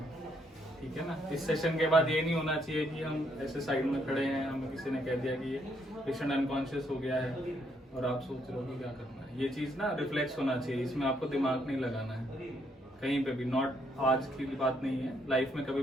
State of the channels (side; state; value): both; normal; correlation 0.73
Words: ठीक है ना। इस सेशन के बाद ये नहीं होना चाहिए कि हम ऐसे साइड में खड़े हैं, हमें किसी ने कह दिया कि ये पेशेंट अनकॉन्शियस हो गया है और आप सोच रहे हो कि क्या करना है। ये चीज़ ना रिफ्लेक्स होना चाहिए, इसमें आपको दिमाग नहीं लगाना है कहीं पे भी। नॉट आज की बात नहीं है, लाइफ में कभी